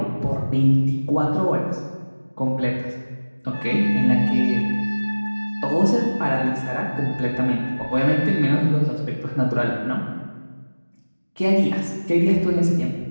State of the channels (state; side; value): inverted; both; correlation -1.00